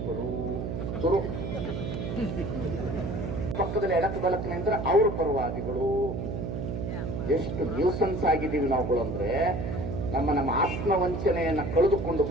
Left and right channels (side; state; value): right; noise; hum, 4 dB below the sound